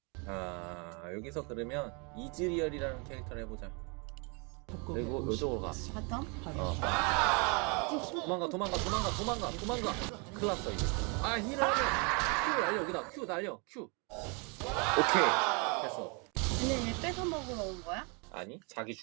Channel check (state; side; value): quieter; left; 32.7 dB